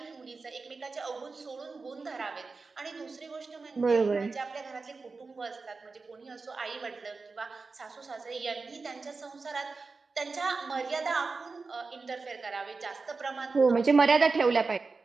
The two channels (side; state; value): left; quieter; 4.2 dB